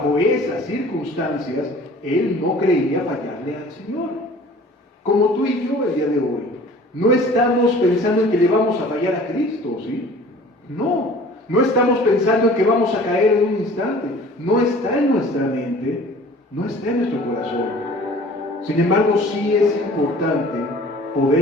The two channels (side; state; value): both; normal; correlation 0.47